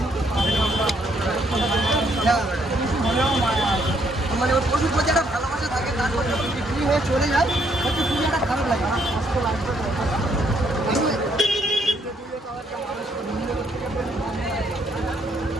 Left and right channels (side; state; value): both; normal; correlation 0.71